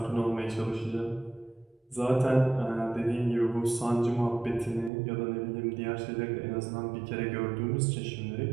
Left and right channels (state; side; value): drops out; left; at 4.9 s